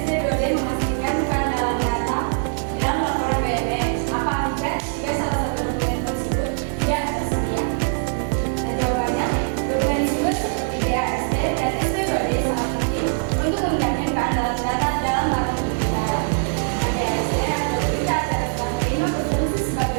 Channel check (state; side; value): silent; left; digital silence